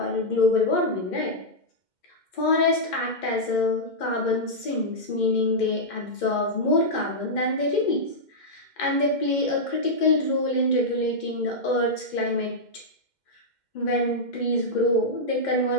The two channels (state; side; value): late; right; 2.1 ms